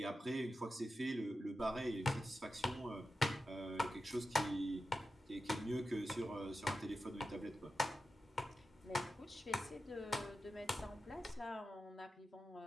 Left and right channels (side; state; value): both; normal; correlation 0.91